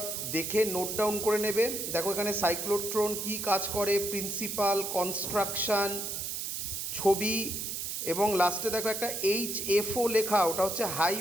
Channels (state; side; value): noise; right; hiss, 4 dB below the sound